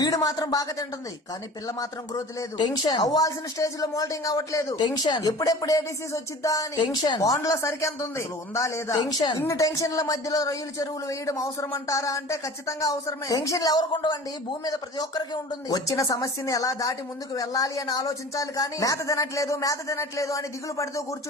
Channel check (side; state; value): both; normal; correlation 0.41